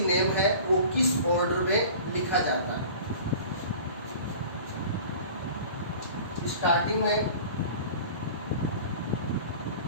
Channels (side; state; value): both; inverted; correlation -0.42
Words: नेम है वो किस ऑर्डर में लिखा जाता है. स्टार्टिंग में